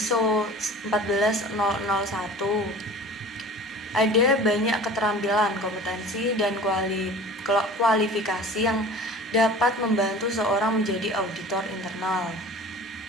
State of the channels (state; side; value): normal; both; correlation 0.41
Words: 14001. Ada banyak keterampilan, kompetensi, dan kualifikasi yang dapat membantu seorang menjadi auditor internal.